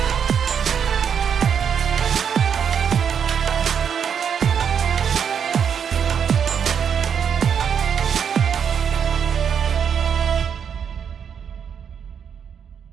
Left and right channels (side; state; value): left; quieter; 7.6 dB